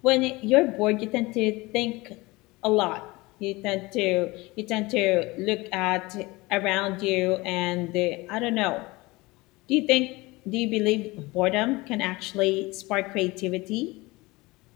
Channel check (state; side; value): quieter; right; 22.4 dB